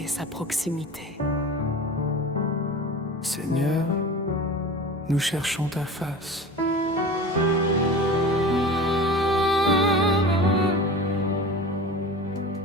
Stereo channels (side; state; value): both; normal; correlation 0.34